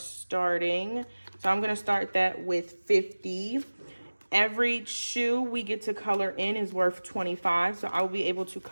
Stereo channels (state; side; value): inverted; both; correlation -1.00